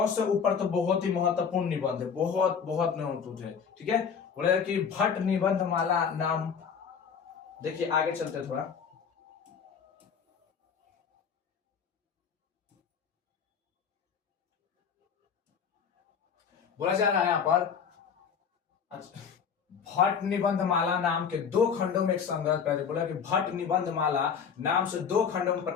से ऊपर तो बहुत ही महत्वपूर्ण निबंध है, बहुत बहुत महत्वपूर्ण है। ठीक है। बोले कि भट्ट निबंध माला नाम। देखिए आगे चलते थोड़ा, बोला जा रहा है यहां पर, अच्छा, भट्ट निबंध माला नाम के 2 खंडों में एक संग्रह, पहले बोला कि भट्ट निबंध माला नाम से 2 खंडों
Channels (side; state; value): right; quieter; 6.8 dB